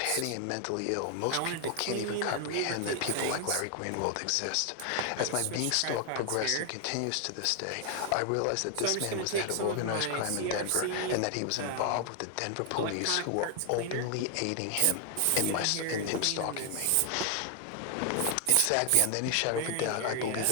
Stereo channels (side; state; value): both; different; correlation 0.00